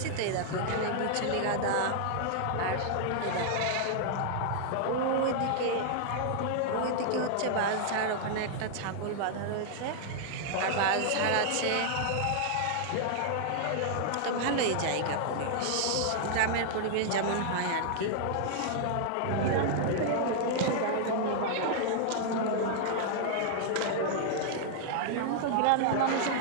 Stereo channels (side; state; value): both; different; correlation -0.01